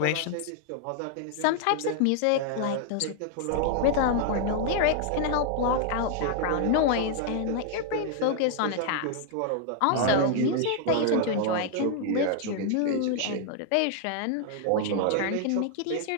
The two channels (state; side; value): different; both; correlation 0.00